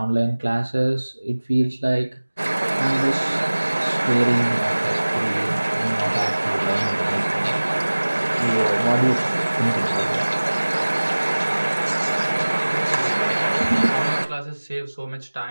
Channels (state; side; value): inverted; both; correlation -1.00